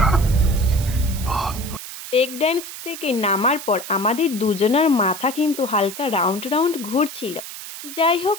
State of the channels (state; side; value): noise; right; hiss, 11 dB below the sound